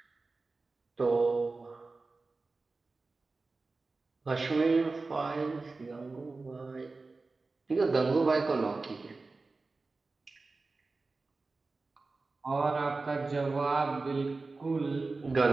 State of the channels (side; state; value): left; quieter; 3.7 dB